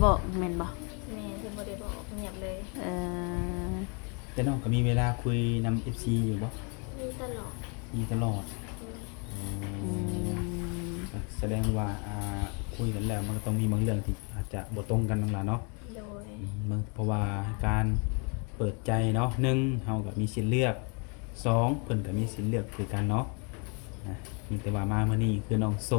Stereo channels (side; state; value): right; quieter; 35.3 dB